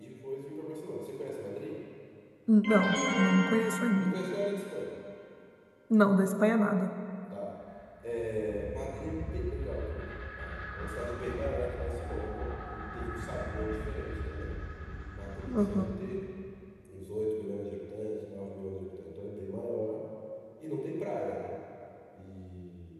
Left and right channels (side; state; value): both; identical; correlation 1.00